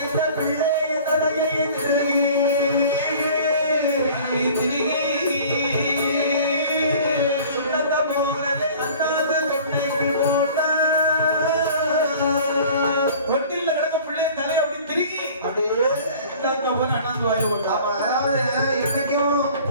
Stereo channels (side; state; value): both; inverted; correlation -0.46